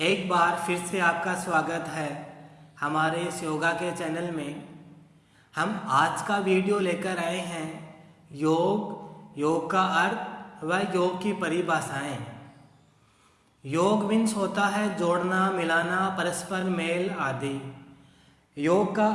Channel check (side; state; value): both; identical; correlation 1.00